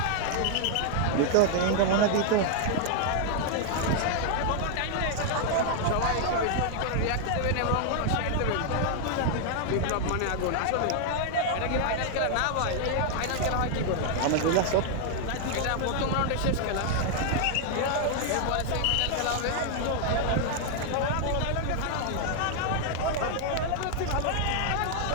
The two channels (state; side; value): different; both; correlation 0.00